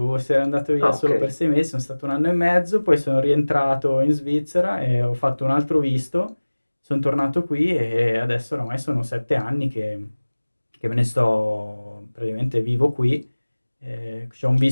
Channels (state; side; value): inverted; both; correlation -1.00